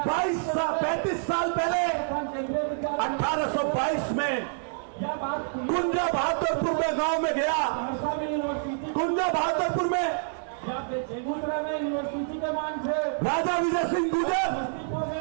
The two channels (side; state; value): left; silent; digital silence